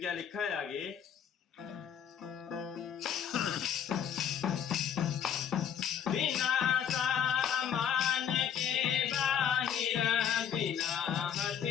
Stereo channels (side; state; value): right; quieter; 8.6 dB